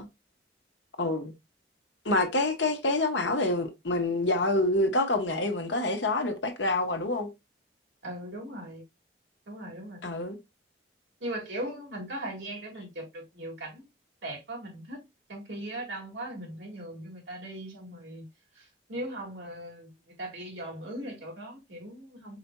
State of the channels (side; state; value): both; normal; correlation -0.08